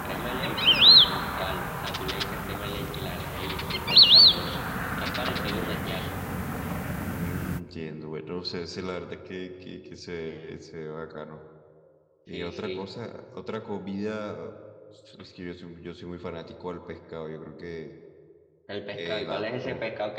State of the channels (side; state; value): both; identical; correlation 1.00